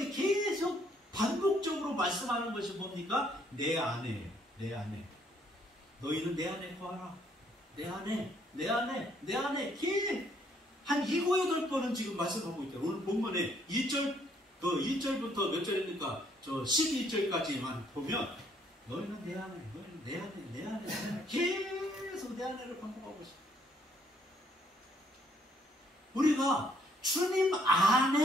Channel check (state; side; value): normal; both; correlation 0.67